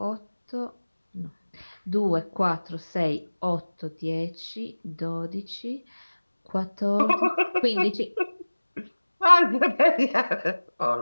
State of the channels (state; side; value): inverted; both; correlation -1.00